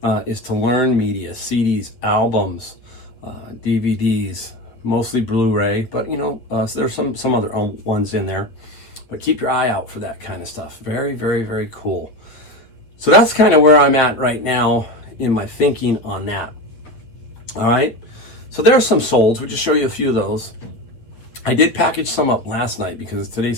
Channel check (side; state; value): right; late; 9.1 ms